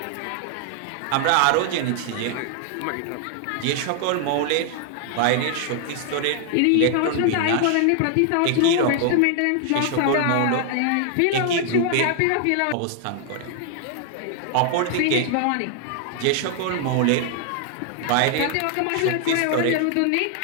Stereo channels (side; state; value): both; different; correlation 0.00